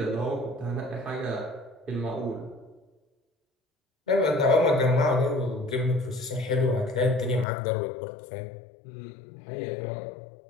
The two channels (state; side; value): drops out; right; at 7.5 s